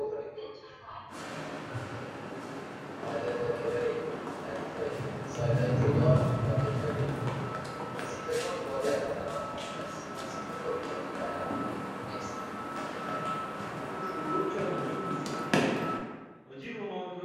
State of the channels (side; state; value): both; identical; correlation 1.00